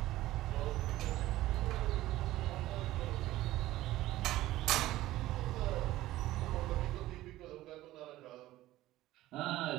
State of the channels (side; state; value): left; quieter; 15.9 dB